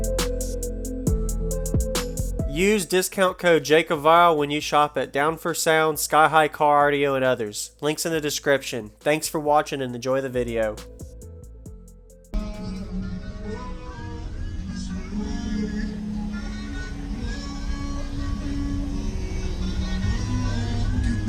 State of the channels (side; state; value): both; identical; correlation 1.00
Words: Use discount code JacobViral when you shop at Down for Sound, SkyHigh Car Audio, and others. Links in the description. Thanks for watching and enjoy the video.